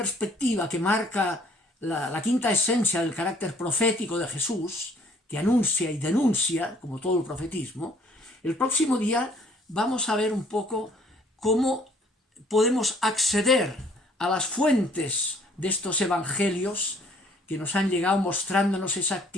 que marca la quinta esencia del carácter profético de Jesús, que anuncia y denuncia, como todo el profetismo, el próximo día vamos a ver un poco cómo podemos acceder a las fuentes de estos evangelios que nos han llegado mostrándonos esa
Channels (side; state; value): both; normal; correlation 0.60